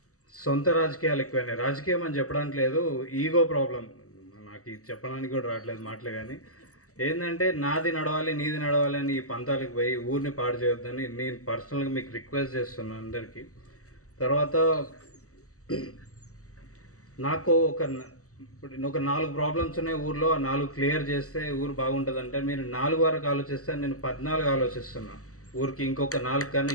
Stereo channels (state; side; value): late; right; 0.65 ms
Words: సొంత రాజకీయాలు ఎక్కువైనాయి. రాజకీయం అని చెప్పడానికి లేదు, ఈగో ప్రాబ్లం. నాకు ఇది చెప్పడానికి కూడా రావట్లేదు మాటలు, కానీ ఏంటంటే నాది నడవాలి నీది నడవాలి అని ఈ పంతాలకు పోయి ఊరిని పాడు చేయొద్దని నేను పర్సనల్గా మీకు రిక్వెస్ట్ చేస్తున్నాను అందరికీ. తర్వాత నాకు ఒక 4 ప్రాబ్లమ్స్ ఉన్నాయి ఊర్లో, ఆ 4 క్లియర్ చేస్తే ఊరు బాగుంటుంది. అంటే మీరు 4 వరకు ఆలోచిస్తే నేను 14 ఆలోచిస్తున్నా. ఊరికి ఇంకొక 4 కన్నా